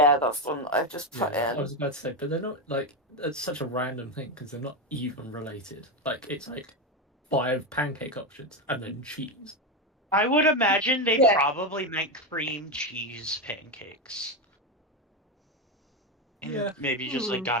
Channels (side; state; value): both; normal; correlation 0.12